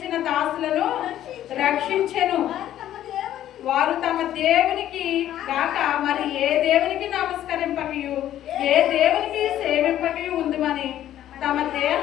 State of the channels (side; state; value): right; quieter; 12.1 dB